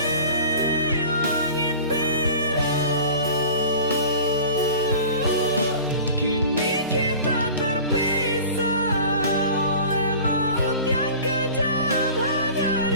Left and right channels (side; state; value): both; inverted; correlation -0.41